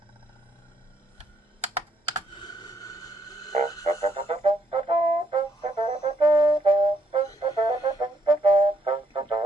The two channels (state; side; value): normal; both; correlation 0.72